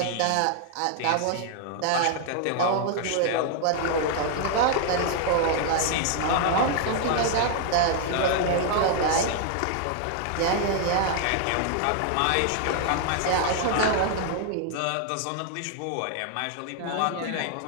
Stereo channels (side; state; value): both; different; correlation 0.00